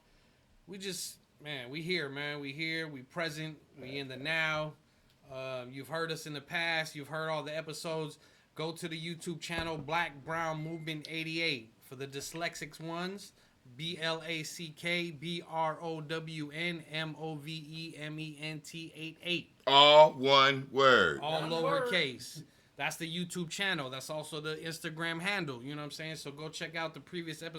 we just, man, we here, man. We here, we present, we in the now. You've heard us in the past. You've heard all the episodes. Go to the YouTube channel, Black Brown Movement 88. For the dyslexics ones, BlackBrownMovement 88. All one word. All lowercase. That's the YouTube channel. That's also the Instagram handle. You know what I'm saying? So go check out the previous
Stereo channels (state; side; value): identical; both; correlation 1.00